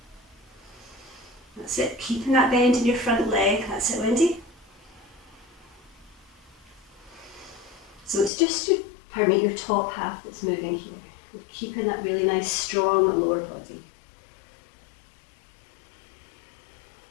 That's it. Keeping that bend in your front leg. That's it, Wendy. So it's just your top half that's moving here. We're keeping that really nice, strong lower body.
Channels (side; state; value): right; drops out; at 8.3 s